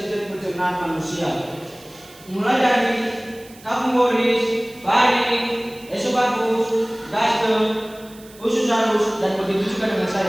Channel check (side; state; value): right; noise; hiss, 23 dB below the sound